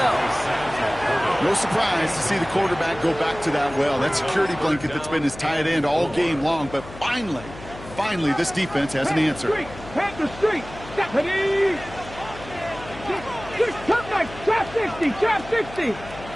No surprise to see the quarterback go back to that well. That security blanket that's been his tight end all game long, but finally, this defense has an answer. Panther Street. Stephanie. Trap 60.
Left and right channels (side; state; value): left; noise; hum, 16 dB below the sound